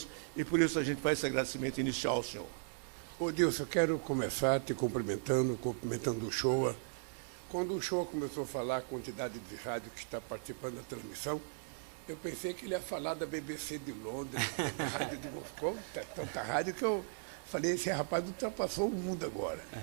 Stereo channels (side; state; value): left; silent; 53 dB below the other